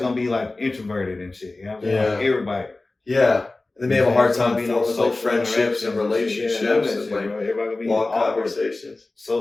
be like introverted and shit. You know what I'm saying? Yeah. Like, everybody. Yeah. They may have a hard time forming like friendships and relationships and like everybody gonna be long awkward, conversations,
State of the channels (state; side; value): quieter; right; 3.1 dB